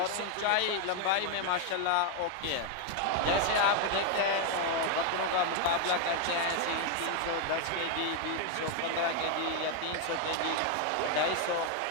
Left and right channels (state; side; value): different; both; correlation 0.00